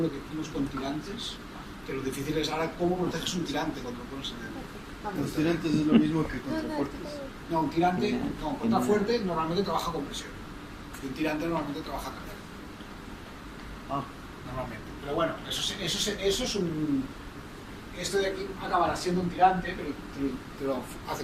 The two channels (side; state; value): both; identical; correlation 1.00